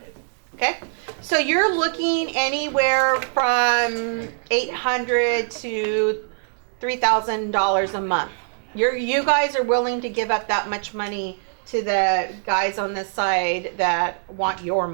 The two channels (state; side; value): silent; left; 64 dB below the other